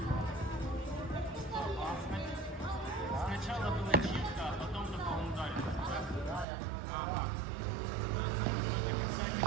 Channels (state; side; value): drops out; left; at 6.5 s